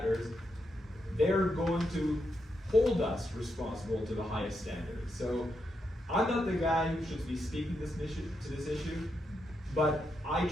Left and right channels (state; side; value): normal; both; correlation 0.83